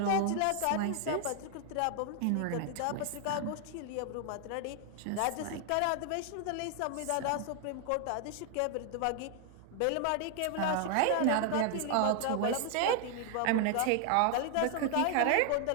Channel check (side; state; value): both; different; correlation 0.00